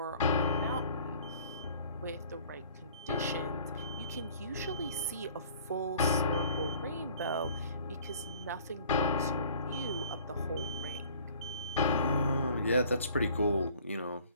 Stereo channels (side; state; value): both; inverted; correlation -0.53